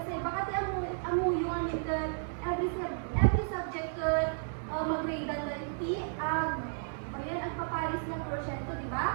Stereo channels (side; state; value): left; silent; digital silence